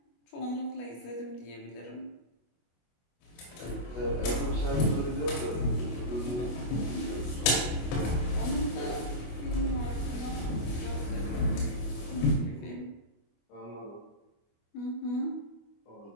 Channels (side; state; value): right; late; 25 ms